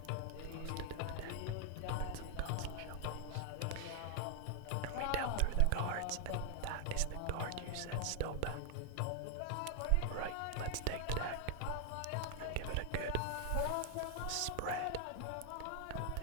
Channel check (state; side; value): different; both; correlation 0.00